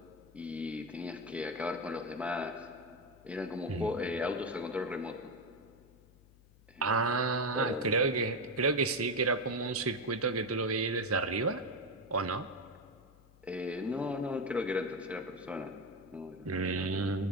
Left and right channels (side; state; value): left; noise; hum, 26 dB below the sound